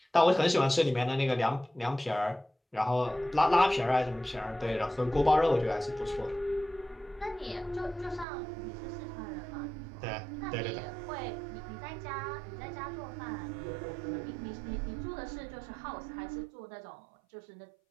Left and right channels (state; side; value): drops out; left; at 8.2 s